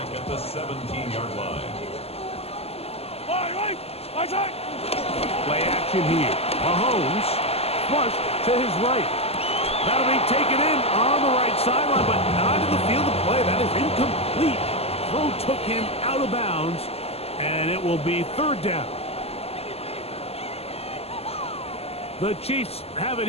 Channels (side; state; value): right; late; 0.29 ms